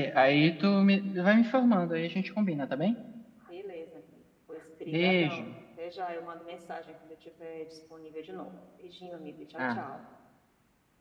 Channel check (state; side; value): identical; both; correlation 1.00